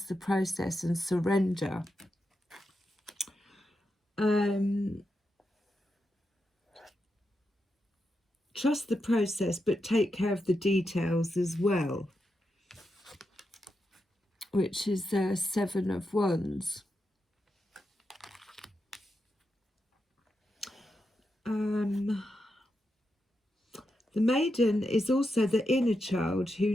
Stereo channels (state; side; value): normal; both; correlation 0.86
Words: the process and surrender. Trust the process, but take care of the details as well, which is 7 of Wands. The maiden is also the inner child who